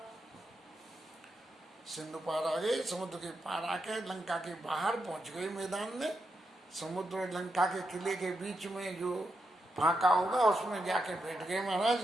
सिंधु पार आ गए, समुद्र के पार आके लंका के बाहर पहुंच गए मैदान में। समुद्र और लंका के किले के बीच में जो फाका होगा उसमें जाके बैठ गए महाराज।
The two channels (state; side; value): normal; both; correlation 0.84